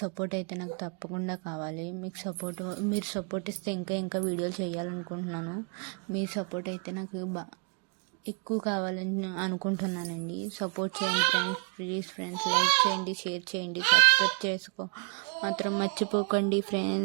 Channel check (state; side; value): quieter; left; 34.4 dB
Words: అయితే నాకు తప్పకుండా కావాలి. మీరు సపోర్ట్ ఇస్తే ఇంకా వీడియోలు చేయాలనుకుంటున్నాను. మీ సపోర్ట్ అయితే నాకు ఎక్కువ కావాలని అనుకుంటున్నానండి. సపోర్ట్ చేయండి ఫ్రెండ్స్, ప్లీజ్ ఫ్రెండ్స్. లైక్ చేయండి, షేర్ చేయండి, సబ్స్క్రైబ్ చేసుకో మాత్రం మర్చిపోకండి